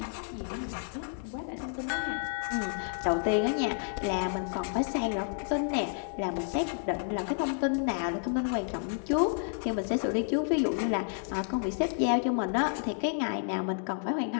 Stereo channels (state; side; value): silent; right; 57 dB below the other